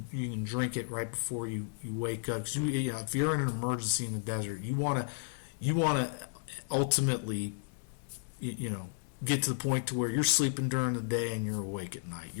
drink it right before you wake up. 'Cause if you're in an emergency in the desert, you want to ultimately get to the point to where you're sleeping during the day and you're awake at night.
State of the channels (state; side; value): silent; right; digital silence